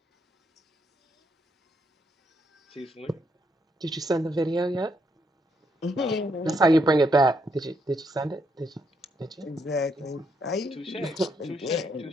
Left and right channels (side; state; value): both; normal; correlation 0.76